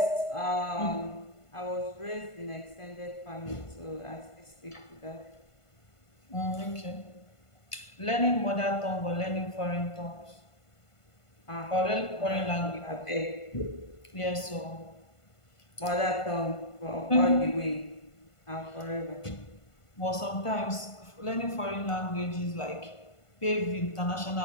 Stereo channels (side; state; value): right; late; 1.5 ms